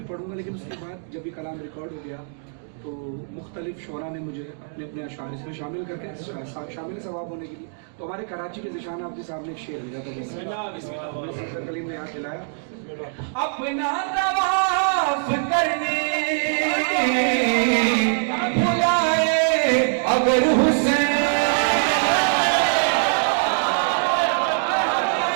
पढ़ूंगा। लेकिन उसके बाद जब ये कलाम रिकॉर्ड हो गया तो मुख्तलिफ शोरा ने मुझे अपने अपने अशार इसमें शामिल करके शामिल सवाब होने के लिए, तो हमारे कराची के ज़िशान आबदी साहब ने एक शेर लिया था, सफदर कलीम ने याद दिलाया। अपना तवाफ करने बुलाए अगर हुसैन,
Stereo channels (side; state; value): left; silent; digital silence